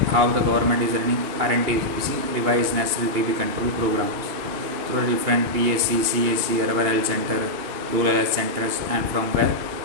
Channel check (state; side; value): late; left; 2.9 ms